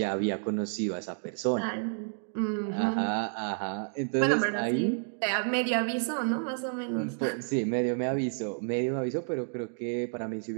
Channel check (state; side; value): silent; left; digital silence